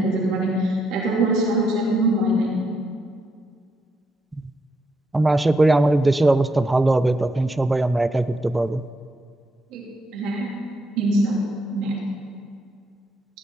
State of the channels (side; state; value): both; normal; correlation 0.78